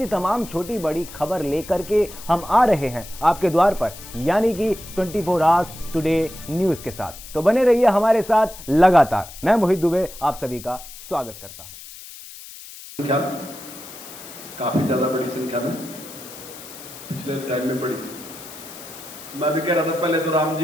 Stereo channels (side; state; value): left; noise; hiss, 15 dB below the sound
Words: तमाम छोटी बड़ी खबर लेकर के हम आ रहे हैं आपके द्वार पर, यानी कि 24 आवर्स टुडे न्यूज के साथ। तो बने रहिए हमारे साथ लगातार। मैं मोहित दुबे आप सभी का स्वागत करता हूं। काफी ज्यादा बड़ी संख्या में पिछले टाइम में बढ़ी। मैं भी कह रहा था पहले तो राम